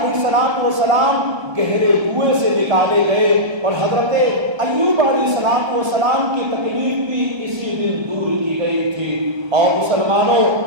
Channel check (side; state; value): left; late; 1.3 ms